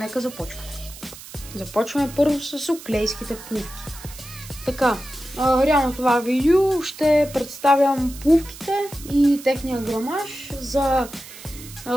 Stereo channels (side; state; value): right; noise; hiss, 16 dB below the sound